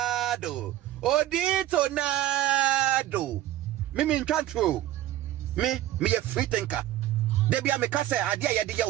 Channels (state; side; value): quieter; left; 13.9 dB